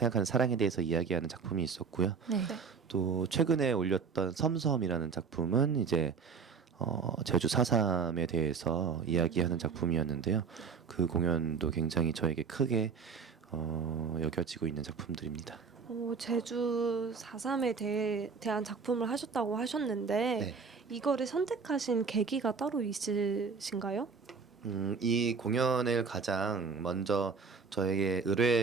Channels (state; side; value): quieter; left; 5.4 dB